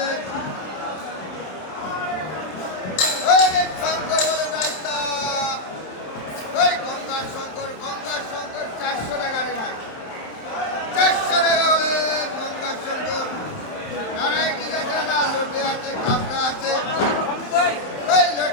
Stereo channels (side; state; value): right; late; 27 ms